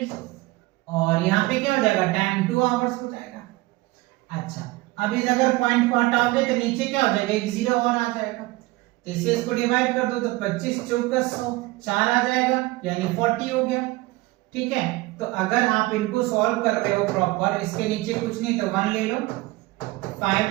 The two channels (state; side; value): quieter; left; 20.5 dB